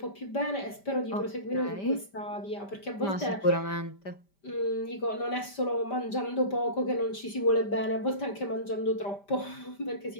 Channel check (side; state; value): right; late; 5.1 ms